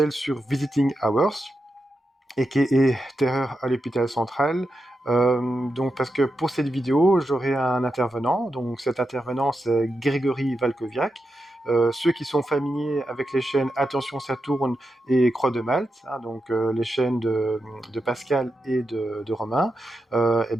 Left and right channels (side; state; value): both; normal; correlation 0.88